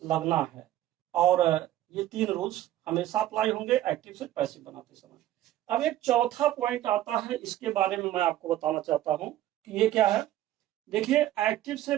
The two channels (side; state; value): left; quieter; 13.7 dB